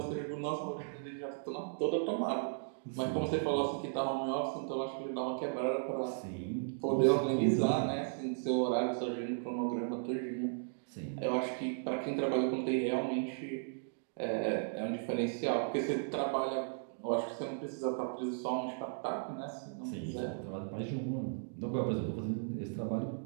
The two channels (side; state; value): left; silent; digital silence